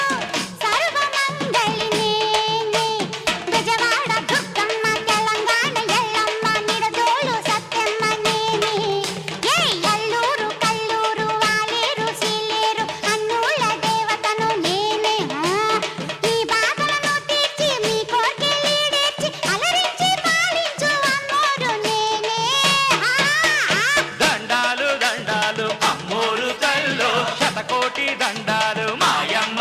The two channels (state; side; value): identical; both; correlation 1.00